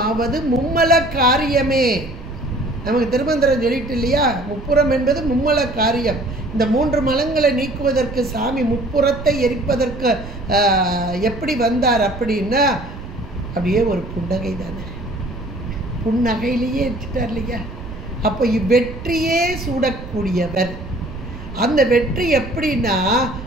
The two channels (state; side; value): noise; right; rumble, 12 dB below the sound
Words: மும்மல காரியமே. நமக்கு திருமந்திரம் சொல்லிட்டு இல்லையா, முப்புறம் என்பது மும்மல காரியம். இந்த 3 மலங்களை நீக்குவதற்கு சாமி முப்புறத்தை எரிப்பதற்கு எப்படி வந்தார் அப்படின்னா, அப்படியே ஒரு புன்னகை தானே, புன்னகையிலேயே எரிச்சிட்டார் இல்லையா. அப்போ வெற்றியே சூடக்கூடியவர். அந்த வெற்றி எப்படின்னா,